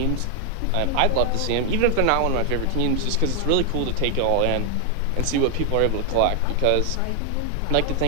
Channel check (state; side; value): different; both; correlation 0.00